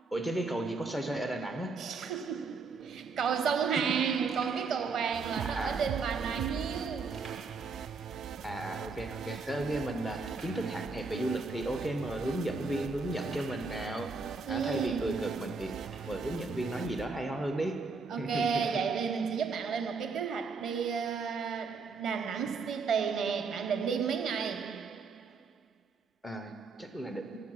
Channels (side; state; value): left; quieter; 4.5 dB